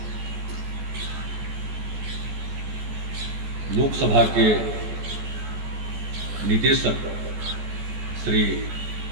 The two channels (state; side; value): late; left; 14 ms